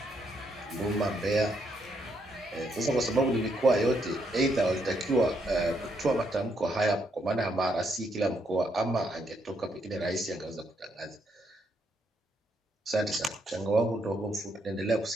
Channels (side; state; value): both; normal; correlation 0.76